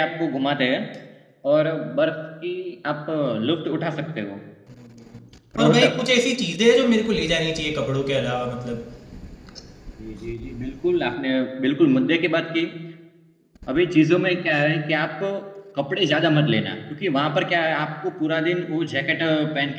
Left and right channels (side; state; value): both; identical; correlation 1.00